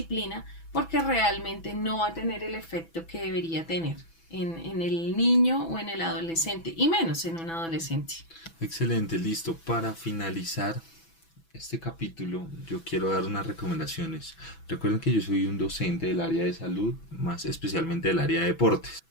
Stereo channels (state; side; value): late; right; 6.0 ms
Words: porque realmente no va a tener el efecto que debería tener en el niño o en el adolescente, y menos en un adolescente. Excelente, listo. Para finalizar este capítulo, yo quiero dar unas recomendaciones. Recuerden que yo soy un docente del área de salud, más especialmente del área de deportes.